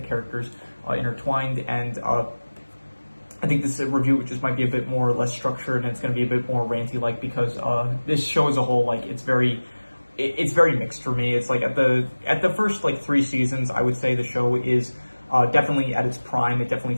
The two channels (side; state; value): both; inverted; correlation -1.00